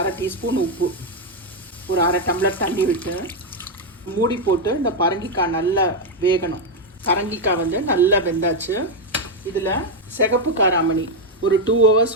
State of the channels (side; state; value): both; normal; correlation 0.03